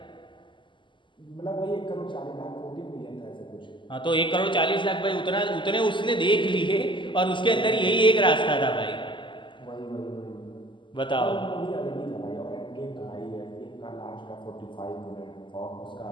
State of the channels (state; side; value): late; right; 0.24 ms